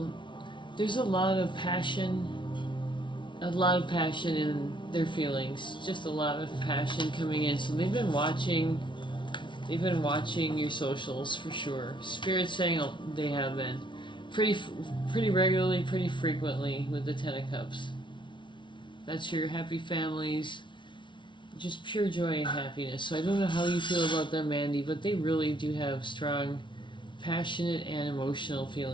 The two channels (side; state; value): right; late; 0.24 ms